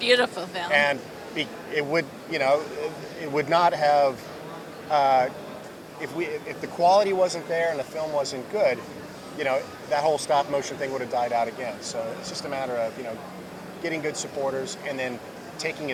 film. And it would not have if the quality wasn't there and the film wasn't good, that whole stop motion thing would have died out again. So it's just a matter of getting good supporters and then taking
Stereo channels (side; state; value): both; identical; correlation 1.00